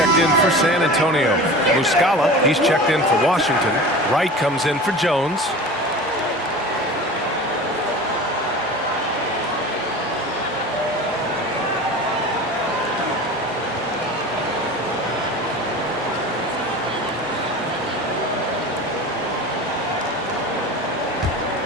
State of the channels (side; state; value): both; normal; correlation 0.35